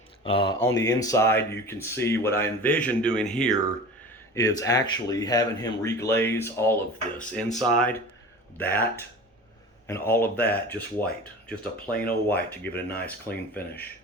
On the inside, you can see what I envision doing here is actually having him reglaze all of this inside, that, and all of that just white. Just a plain old white to give it a nice clean finish.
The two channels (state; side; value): normal; both; correlation 0.37